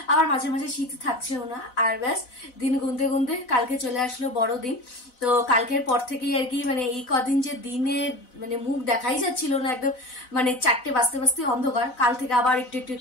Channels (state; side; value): late; right; 4.0 ms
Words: আবার মাঝে মাঝে শীত থাকছেও না। আর ব্যাস দিন গুনতে গুনতে কালকে চলে আসলো বড়দিন। তো কালকের পর থেকেই আর কি মানে এই কদিন যে দিনে মানে মুখ দেখাই যাচ্ছিল না, একদম মানে 4টে বাজতে বাজতে অন্ধকার। কাল থেকে আবার একটু একটু